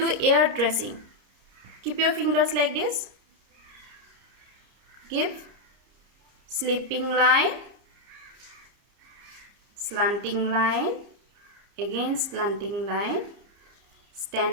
do ear tracing. Keep your fingers like this. Give sleeping line, slanting line, again slanting line,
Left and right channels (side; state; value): left; late; 30 ms